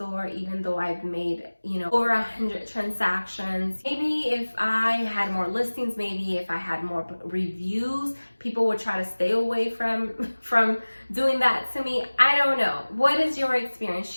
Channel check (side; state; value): both; inverted; correlation -1.00